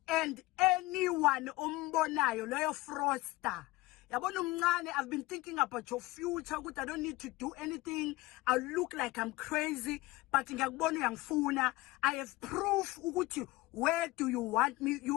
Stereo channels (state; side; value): quieter; right; 20.5 dB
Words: and anyone ombonayo loyo fraudster yabona umncane. I've been thinking about your future ukuthi I don't need to do anything. I look like I'm crazy but ngiyakubona uyangifuna. I have proof ukuthi where do you want me.